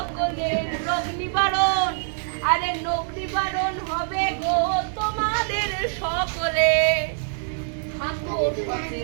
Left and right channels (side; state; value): left; silent; 62 dB below the other